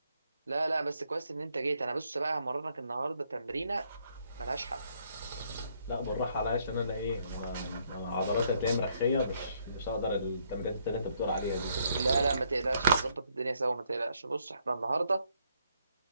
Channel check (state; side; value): inverted; both; correlation -0.71